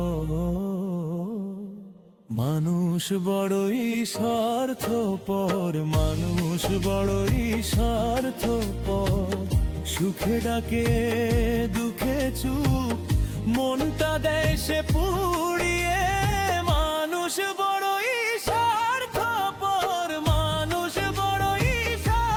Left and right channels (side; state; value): both; identical; correlation 1.00